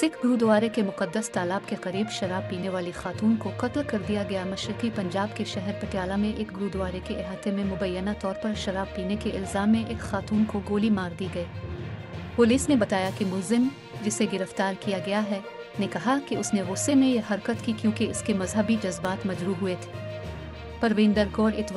गुरुद्वारे के मुकद्दस तालाब के करीब शराब पीने वाली खातून को कत्ल कर दिया गया। मशरकी पंजाब के शहर पटियाला में एक गुरुद्वारे के अहाते में मुबैना तौर पर शराब पीने के इल्ज़ाम में एक खातून को गोली मार दी गई। पुलिस ने बताया कि मुलजिम, जिसे गिरफ्तार किया गया है, ने कहा कि उसने गुस्से में यह हरकत की क्योंकि इसके मजहबी जज्बात मजरूह हुए थे। परविंदर कौर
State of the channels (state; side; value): identical; both; correlation 1.00